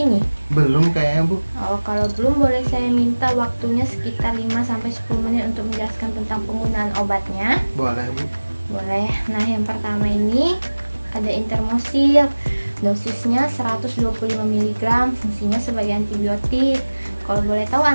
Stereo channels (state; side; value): inverted; both; correlation -1.00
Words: Belum kayaknya Bu. Oh, kalau belum boleh saya minta waktunya sekitar 5-10 menit untuk menjelaskan tentang penggunaan obatnya. Boleh Bu. Boleh. Nah, yang pertama ini ada Intermosil. Dosisnya 125 mg, fungsinya sebagai antibiotik. Kalau boleh tahu